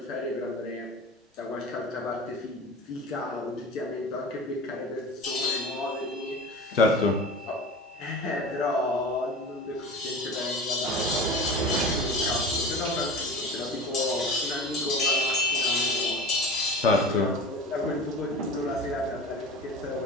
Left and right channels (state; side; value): normal; both; correlation 0.34